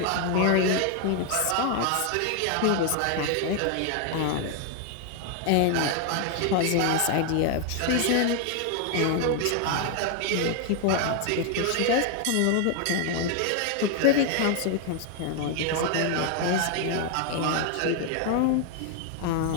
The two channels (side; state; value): both; different; correlation 0.00